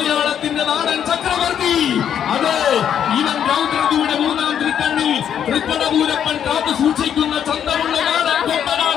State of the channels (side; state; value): right; quieter; 9.0 dB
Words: നാടൻ ചക്രവർത്തി. അതെ, ഇവൻ രൗദ്രതിയുടെ മൂന്നാം തിരുക്കണ്ണിൽ തൃക്കടപൂരപ്പൻ കാത്തു സൂക്ഷിക്കുന്ന ചന്തമുള്ള നാടൻ